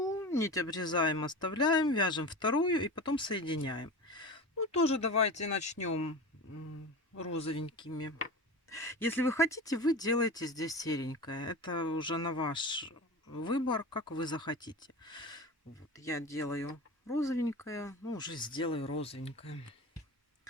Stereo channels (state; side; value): normal; both; correlation 0.29